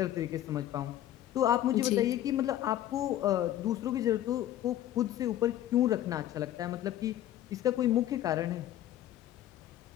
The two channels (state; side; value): quieter; right; 12.6 dB